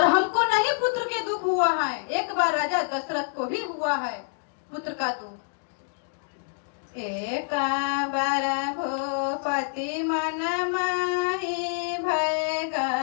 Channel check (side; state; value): right; silent; digital silence